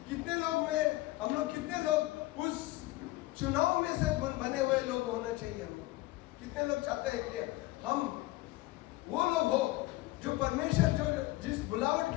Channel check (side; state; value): right; quieter; 19.0 dB